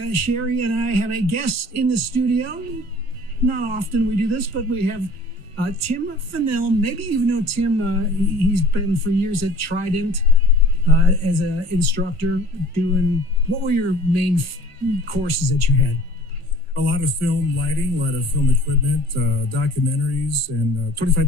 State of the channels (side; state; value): left; late; 1.6 ms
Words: and I have a guest in the studio. Not often we do this, but we have Tim Fennell. Maybe you know Tim. He's been for years at Trident as an instructor doing, what were your main courses that you had? A lot of film lighting, a lot of film equipment, documentaries, and